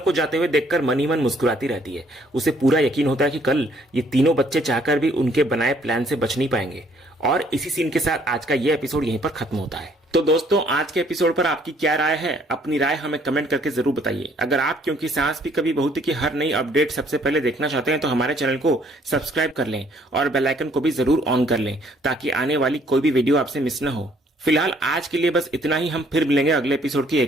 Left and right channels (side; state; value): both; normal; correlation 0.63